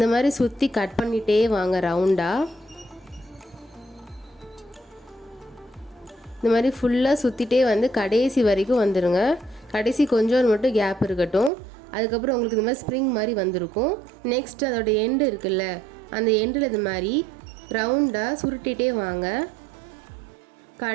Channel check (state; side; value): drops out; left; at 11.5 s